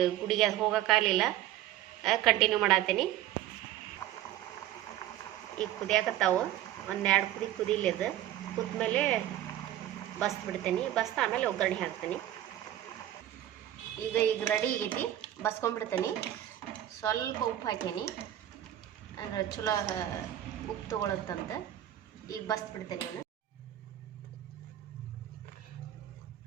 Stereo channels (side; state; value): left; quieter; 12.8 dB